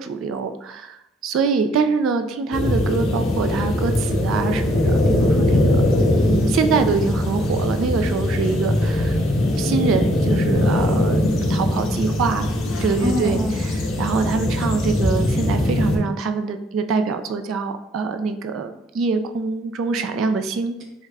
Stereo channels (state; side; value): normal; both; correlation 0.66